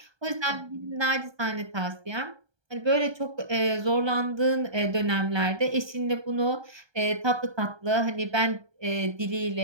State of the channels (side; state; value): left; late; 1.3 ms